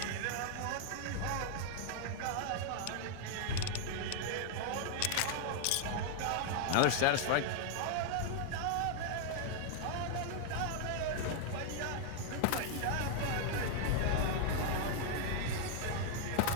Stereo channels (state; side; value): different; both; correlation 0.00